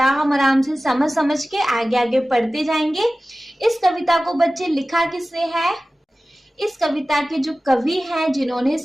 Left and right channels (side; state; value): both; normal; correlation 0.96